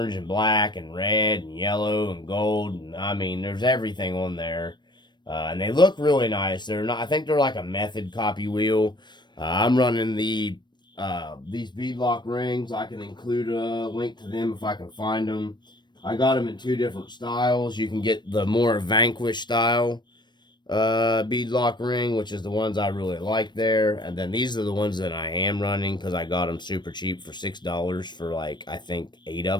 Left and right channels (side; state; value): right; late; 0.22 ms